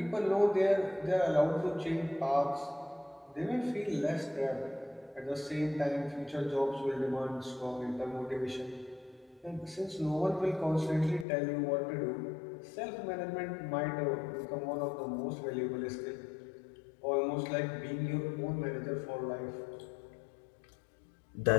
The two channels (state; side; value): drops out; right; at 11.2 s